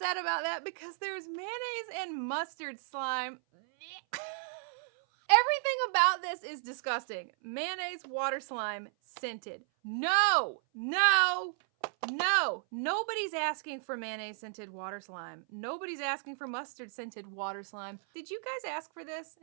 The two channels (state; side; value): silent; left; 55 dB below the other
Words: about that because there's mayonnaise and mustard slime. Everything about this is disgusting. Mayonnaise, water slime, scented. No, no. No, nobody's asking for mayonnaise scented water slime. Nobody's asking for mustard scented water slime. Did you guys ask for this